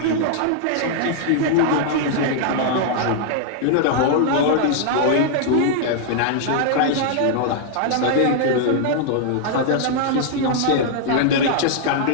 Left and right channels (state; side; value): different; both; correlation -0.01